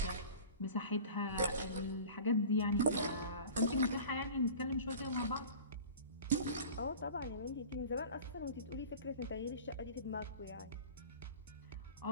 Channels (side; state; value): both; inverted; correlation -0.40